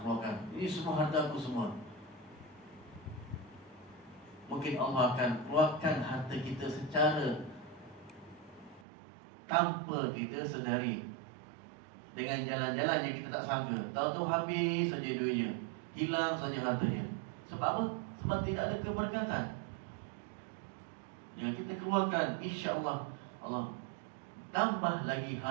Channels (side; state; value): left; drops out; at 8.8 s